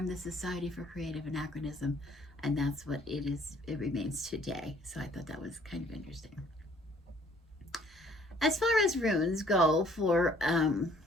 the Society for Creative Anachronism, and that's what it is. It remains today. So I thought that was kind of interesting. As far as runes go for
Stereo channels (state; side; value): normal; both; correlation 0.59